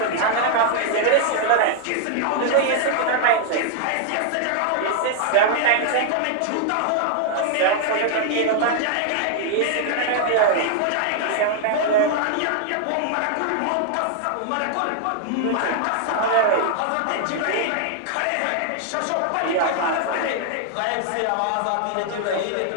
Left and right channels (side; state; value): both; different; correlation 0.00